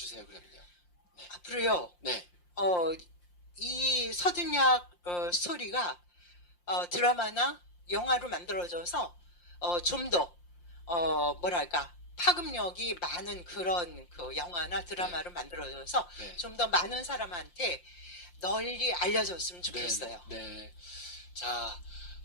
그러면요. 앞으로요. 네. 이 서든야학 스토리가 드라마나 영화로 만들어져서 좀 더 뭐랄까 파급력이 많은 그런 그 영화나 드라마로 만들어져서 네. 좀 더 많은 사람한테 널리 알려졌으면 네. 좋겠어요. 네. 자,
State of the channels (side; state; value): right; late; 5.7 ms